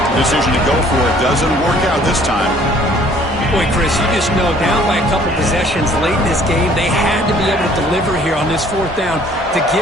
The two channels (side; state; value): both; normal; correlation 0.57